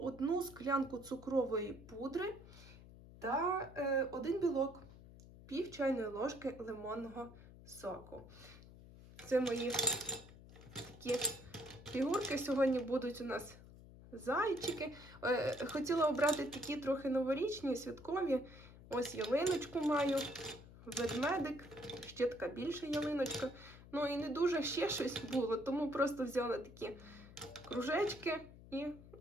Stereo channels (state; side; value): noise; left; hum, 18 dB below the sound